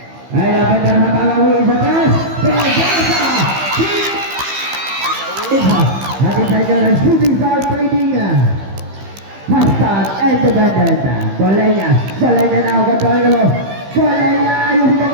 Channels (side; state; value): left; late; 15 ms